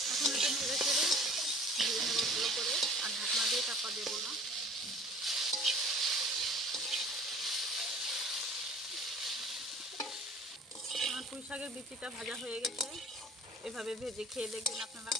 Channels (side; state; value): both; normal; correlation 0.47